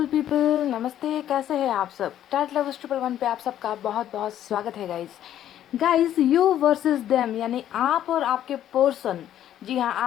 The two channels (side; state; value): right; quieter; 11.4 dB